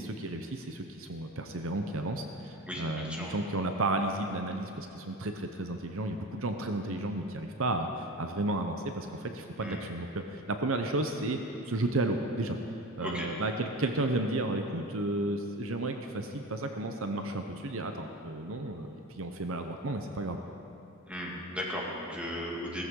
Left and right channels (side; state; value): both; normal; correlation 0.31